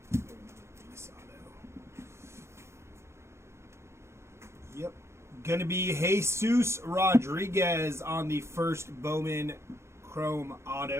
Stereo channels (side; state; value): left; late; 0.13 ms